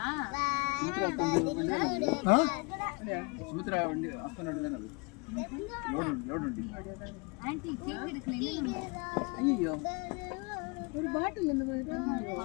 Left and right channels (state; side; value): quieter; right; 31.2 dB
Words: சுமித்ரா வண்டி ஹஸ்பண்ட் தானே அது லோட் வண்டி ஆன்ட்டி கேக் எடுக்கல ஐயோ ஒரு பாட்டில் இந்த